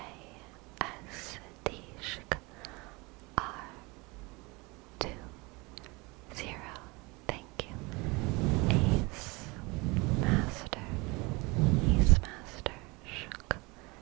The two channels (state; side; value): quieter; left; 25.7 dB